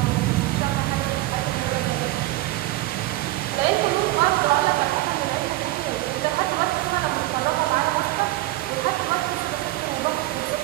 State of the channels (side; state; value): left; quieter; 17.5 dB